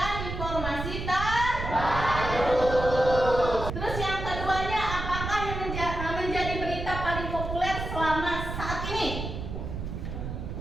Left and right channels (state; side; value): noise; right; rumble, 6 dB below the sound